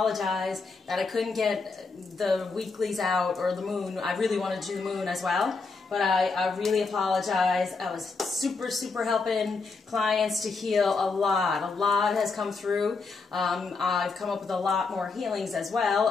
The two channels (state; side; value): quieter; right; 4.3 dB